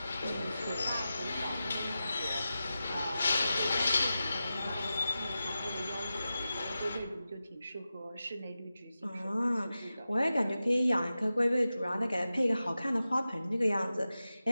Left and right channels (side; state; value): both; inverted; correlation -0.93